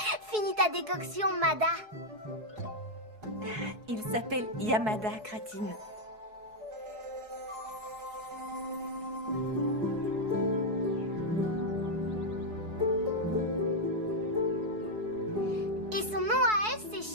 Finis ta décoction, Mada. Il s'appelle Yamada, Kratine. Et son nom à elle,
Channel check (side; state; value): left; late; 4.7 ms